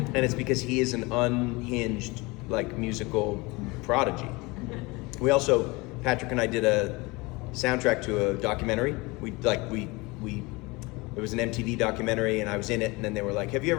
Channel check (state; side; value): quieter; right; 24.3 dB